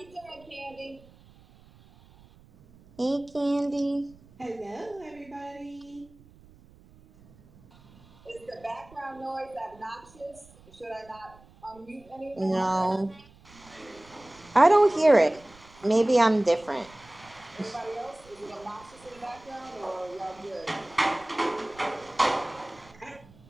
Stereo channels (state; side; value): noise; right; rumble, 25 dB below the sound